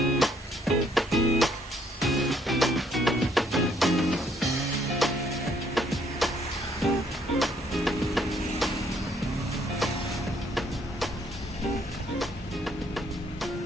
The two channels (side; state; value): both; normal; correlation 0.67